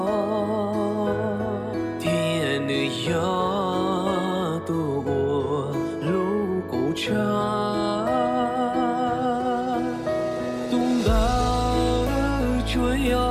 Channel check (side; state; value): both; identical; correlation 1.00